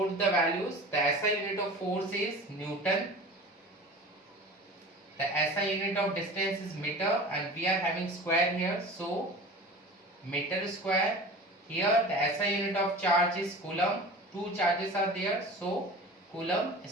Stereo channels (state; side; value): normal; both; correlation 0.37